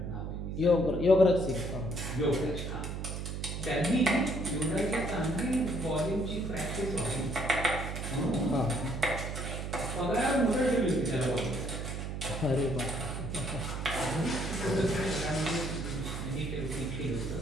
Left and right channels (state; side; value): noise; right; hum, 5 dB below the sound